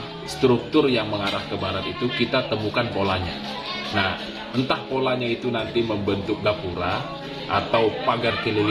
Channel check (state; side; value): identical; both; correlation 1.00